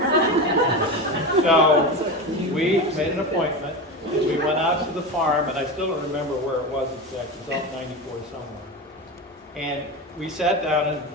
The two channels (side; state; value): both; normal; correlation 0.22